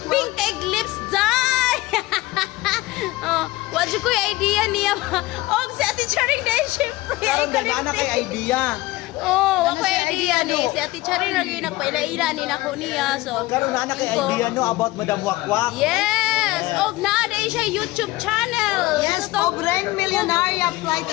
Pink egg lips dye. Oh, wala ko yung idea niya. Oh, si Ate Charing dahil syempre. Karon na kay idea. Oh, ako idea ni. Si Ate Charing lagi nagpaila-ila ni nako niya. So, Karon na kay idea no about Madam Wakwak. yes. Og naaday siya YouTube channel. Yes, Pobreng Millionaire Flight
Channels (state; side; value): quieter; right; 19.3 dB